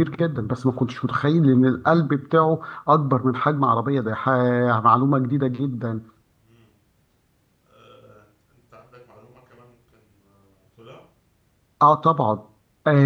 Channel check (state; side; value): identical; both; correlation 1.00